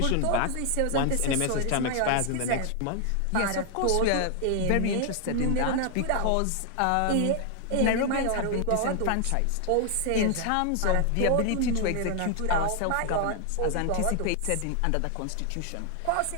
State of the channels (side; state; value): both; different; correlation 0.00